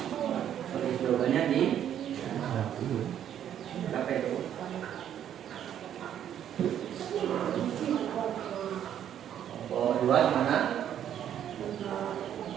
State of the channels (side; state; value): left; quieter; 10.1 dB